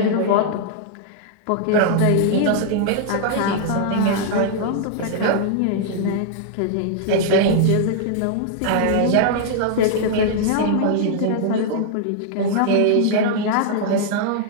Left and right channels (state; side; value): different; both; correlation -0.01